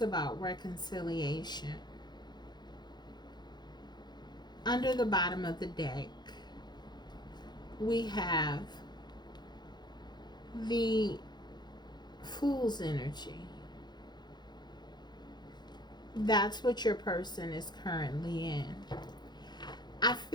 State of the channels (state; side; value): late; right; 0.21 ms